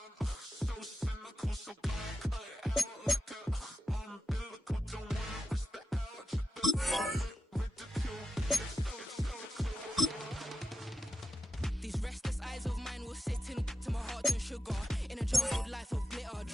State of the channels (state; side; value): normal; both; correlation 0.90